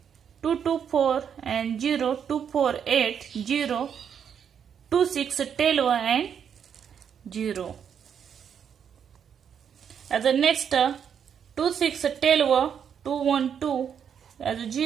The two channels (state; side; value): quieter; left; 7.9 dB